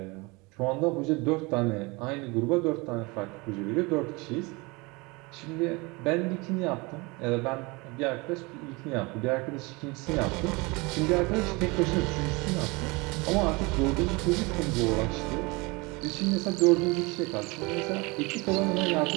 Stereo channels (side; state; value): left; quieter; 26.0 dB